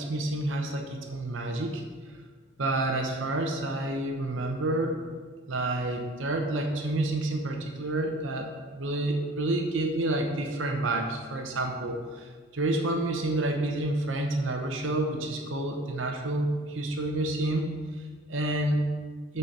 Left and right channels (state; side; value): normal; both; correlation 0.47